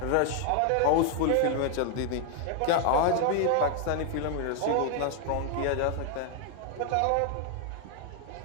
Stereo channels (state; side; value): different; both; correlation 0.00